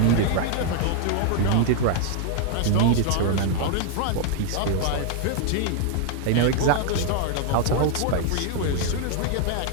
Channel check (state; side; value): different; both; correlation 0.00